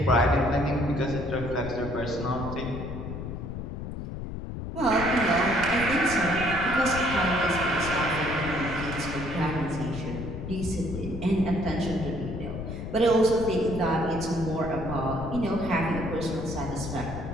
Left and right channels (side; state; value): left; noise; rumble, 7 dB below the sound